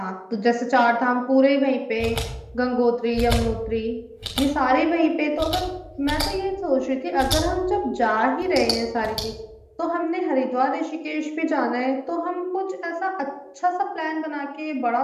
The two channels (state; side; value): identical; both; correlation 1.00